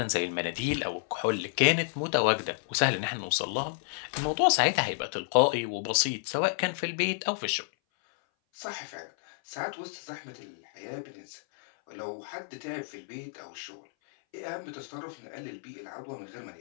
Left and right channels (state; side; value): silent; right; 57 dB below the other